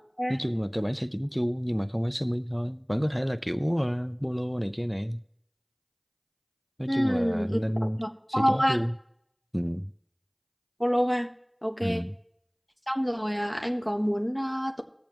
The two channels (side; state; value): both; identical; correlation 1.00